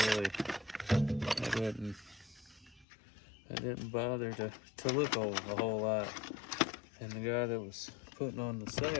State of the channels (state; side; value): drops out; right; at 2.9 s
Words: didn't bother to look a whole lot. And the guy that was putting on the